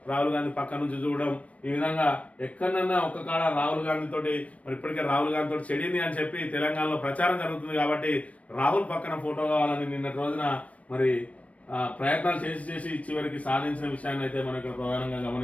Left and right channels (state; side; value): late; right; 0.066 ms